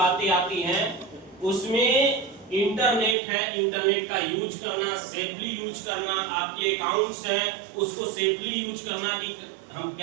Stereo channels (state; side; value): drops out; left; at 3.2 s